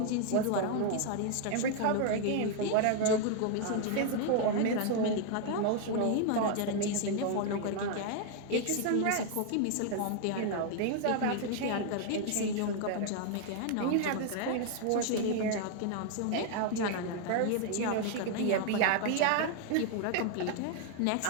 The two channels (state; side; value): different; both; correlation 0.00